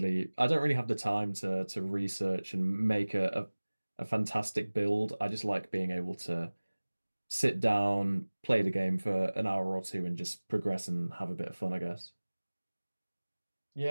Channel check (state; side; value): inverted; both; correlation -1.00